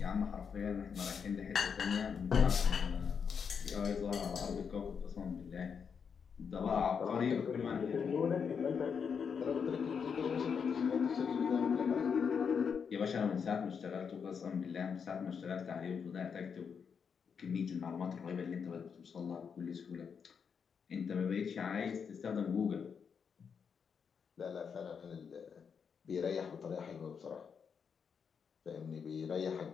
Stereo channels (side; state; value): right; quieter; 6.5 dB